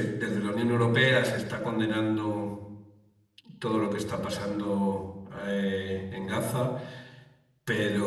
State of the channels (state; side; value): identical; both; correlation 1.00